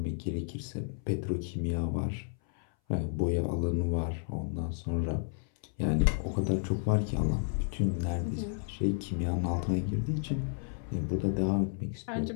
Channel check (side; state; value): right; silent; 57 dB below the other